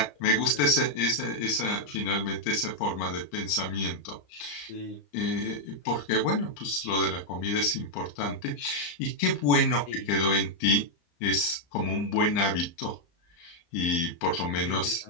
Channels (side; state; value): right; late; 35 ms